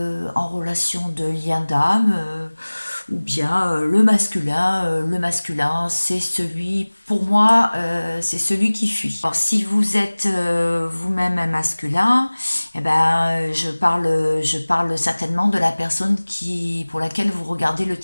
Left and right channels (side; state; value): both; inverted; correlation -1.00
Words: lien d'âme, ou bien le masculin, c'est celui, pour moi, c'est celui qui fuit. Alors, si vous êtes vous-même un masculin, eh ben, je parle certainement de la personne pour laquelle vous regardez le